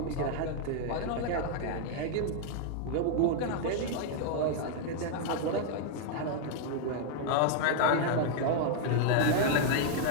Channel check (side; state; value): both; different; correlation 0.00